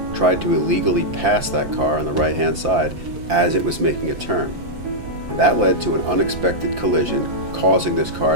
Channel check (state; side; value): late; left; 5.9 ms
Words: tried to illegally pass that car on the right-hand side as it was making a turn. And that led to an unexpected collision, causing this car